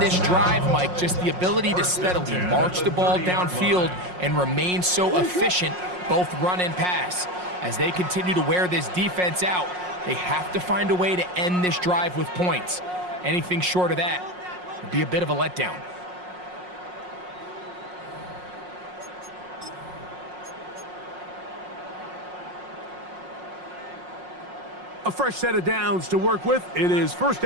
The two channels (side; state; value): left; late; 5.5 ms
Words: drive, Mike. Just the ability to steadily march the ball downfield and remain so efficient, both run and pass. As they continue to wear this defense out, they have to find a way to end this drive with points. Anything short of that would be a bit of a letdown. A fresh set of downs to work with. It is 1st